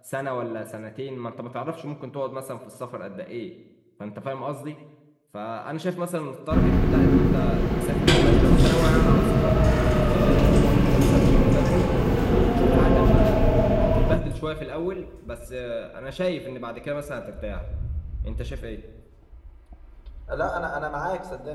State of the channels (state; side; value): identical; both; correlation 1.00